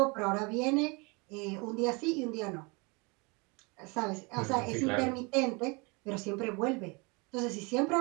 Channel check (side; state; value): left; quieter; 29.1 dB